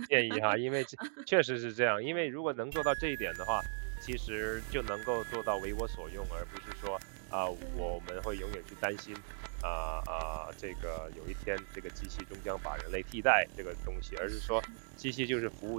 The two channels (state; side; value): silent; left; digital silence